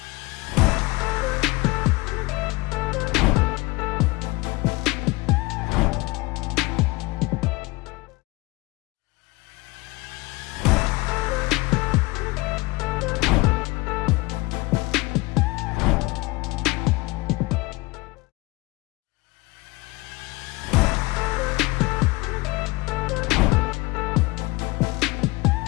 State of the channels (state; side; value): quieter; right; 23.0 dB